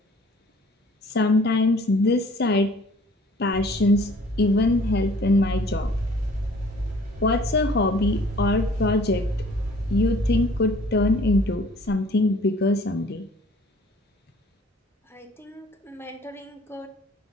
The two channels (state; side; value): normal; both; correlation 0.53